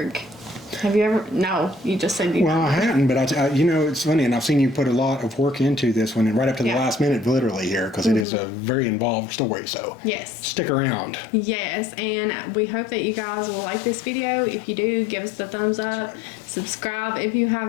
Have you ever... No, you just said you... Well, I hadn't, but it's funny, and I've seen you put a lot of work into this one, and right up to the last minute, literally here, because it is a very involved story, so... Yes. Stick around. Yes, and we hope that you guys will like this video. If you do, give us the thumbs up, subscribe if you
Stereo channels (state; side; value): drops out; right; at 8.2 s